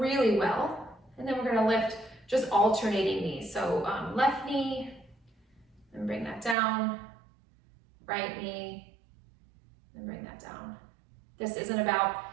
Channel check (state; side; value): drops out; left; at 6.6 s